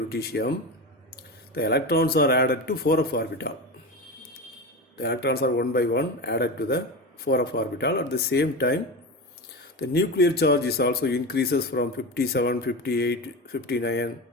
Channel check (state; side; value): normal; both; correlation 0.23